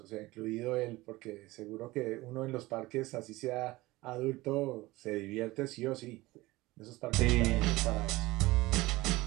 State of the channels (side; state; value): left; quieter; 19.9 dB